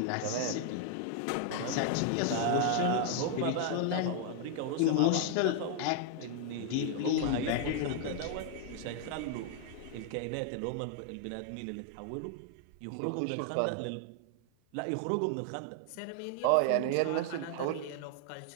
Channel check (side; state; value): both; different; correlation 0.00